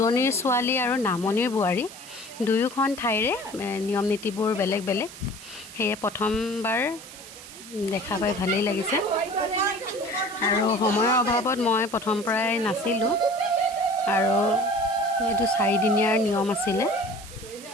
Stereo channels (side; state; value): right; noise; hiss, 16 dB below the sound